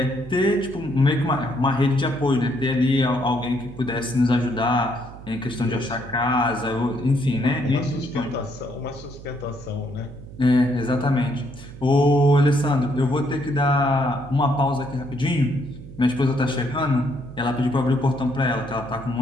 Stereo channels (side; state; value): right; noise; hum, 16 dB below the sound